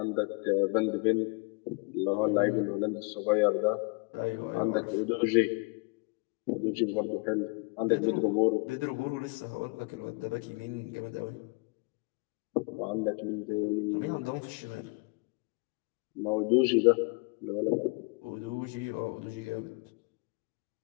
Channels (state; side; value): quieter; right; 30.0 dB